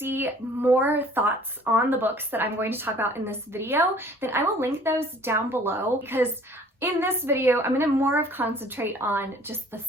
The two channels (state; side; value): normal; both; correlation 0.53